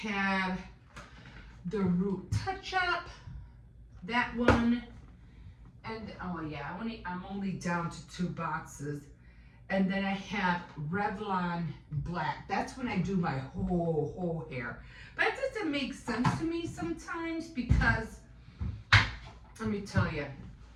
the root touch-up, that one. And, oh yeah, I'm only down to 2 boxes. And then I have Revlon Black. That's when I do my whole hair. But it doesn't make sense to me sometimes because, let me tell you.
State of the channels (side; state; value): both; identical; correlation 1.00